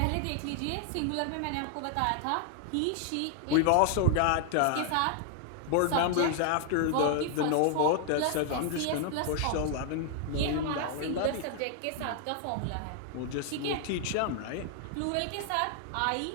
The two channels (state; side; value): different; both; correlation 0.00